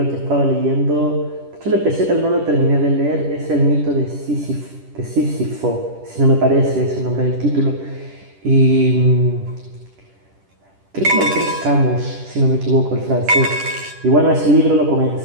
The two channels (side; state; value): left; late; 10 ms